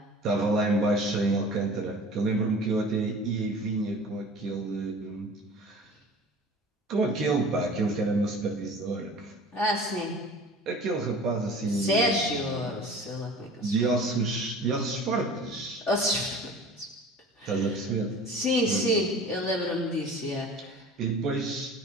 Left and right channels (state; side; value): normal; both; correlation 0.42